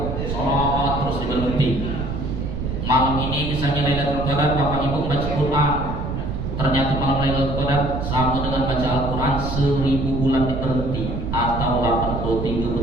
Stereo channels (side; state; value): right; noise; rumble, 3 dB below the sound